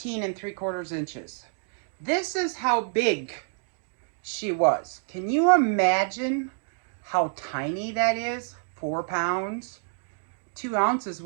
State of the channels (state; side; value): silent; left; 60 dB below the other